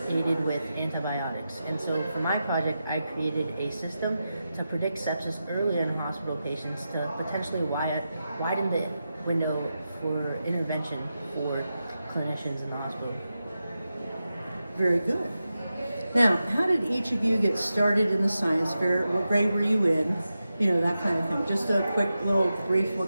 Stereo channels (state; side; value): inverted; both; correlation -0.91